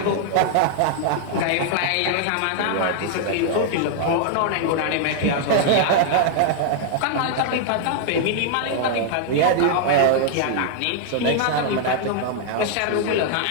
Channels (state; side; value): different; both; correlation 0.00